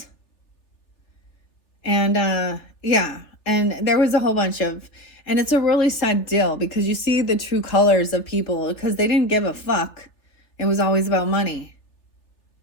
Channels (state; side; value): late; right; 3.4 ms